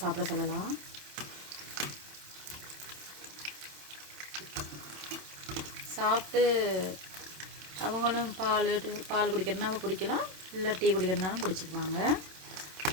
சாப்பிட சொல்லலாம். சாப்பிட்டு அவங்களும் பால் குடிக்கிறதுனாலும் குடிக்கலாம், இல்லை டீ குடிக்கிறதுனாலும் குடிச்சிக்குவாங்க.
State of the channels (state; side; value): late; left; 27 ms